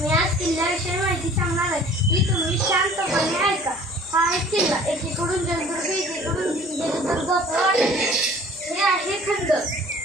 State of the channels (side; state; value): both; normal; correlation 0.50